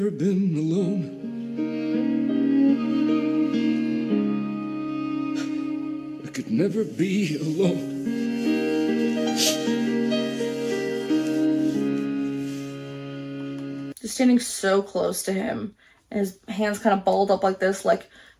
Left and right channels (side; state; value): both; identical; correlation 1.00